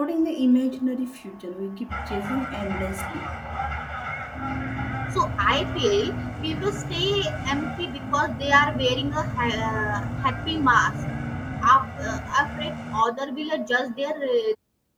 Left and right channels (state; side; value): identical; both; correlation 1.00